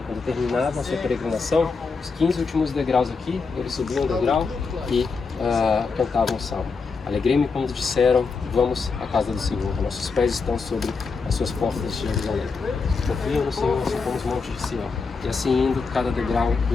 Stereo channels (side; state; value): right; quieter; 4.7 dB